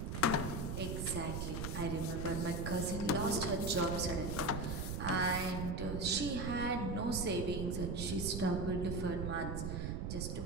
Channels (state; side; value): noise; right; rumble, 3 dB below the sound